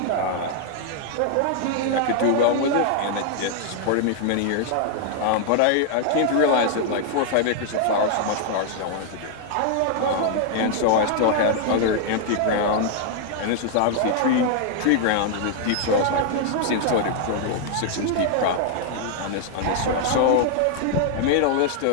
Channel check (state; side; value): different; both; correlation 0.00